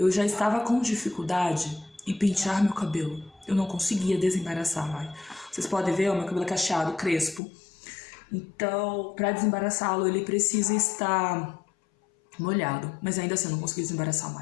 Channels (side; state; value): right; drops out; at 7.4 s